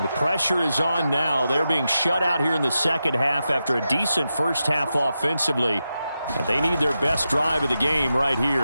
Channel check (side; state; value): both; inverted; correlation -0.89